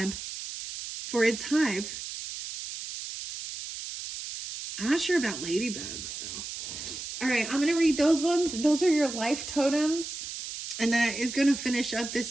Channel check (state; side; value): noise; right; hiss, 8 dB below the sound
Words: for its hive. I'm not sure about ladybugs, though. All right, I'm going to read those ones. Those are your life totems. And that is going to finish up